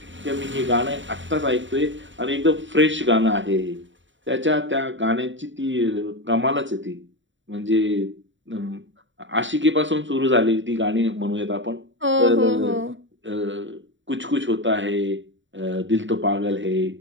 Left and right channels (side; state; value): left; late; 0.55 ms